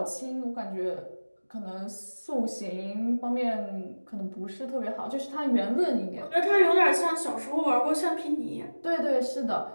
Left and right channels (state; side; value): inverted; both; correlation -1.00